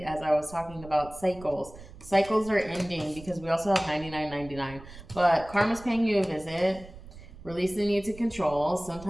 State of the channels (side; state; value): right; noise; rumble, 17 dB below the sound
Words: as I was talking about cycles. Cycles are ending because we also have 99.99. But karma's paying you a visit. Release the need to control.